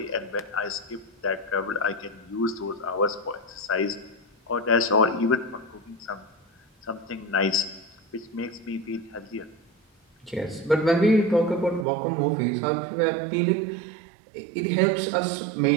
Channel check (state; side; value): drops out; left; at 11.9 s